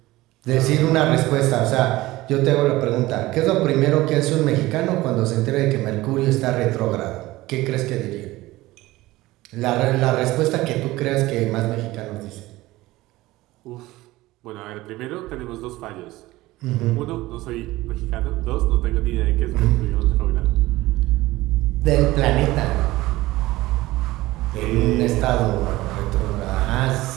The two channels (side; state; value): left; quieter; 18.3 dB